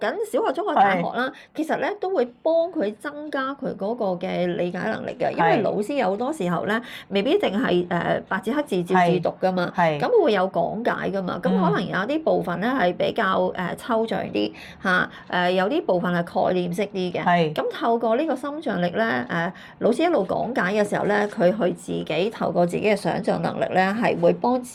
小學、中學、大學啦，其實咧都會幫佢增加佢嗰個嘅理解能力嘅，因為老師有好多時候咧，未必淨係白紙黑字照字讀噶嘛，咁會有講解噶嘛，咁可能有啲部分咧係比較抽象啲有啲部分係概念式啲嘅，咁透過呢個心象力咧，老師一路講解嘅時候咧，佢去自己透過自己嘅想像能力咧，係會幫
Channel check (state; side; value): identical; both; correlation 1.00